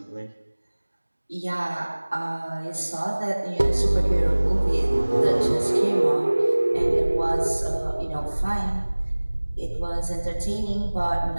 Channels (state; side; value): inverted; both; correlation -1.00